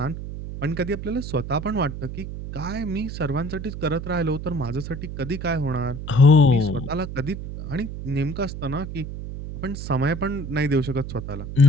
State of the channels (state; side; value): noise; right; hum, 8 dB below the sound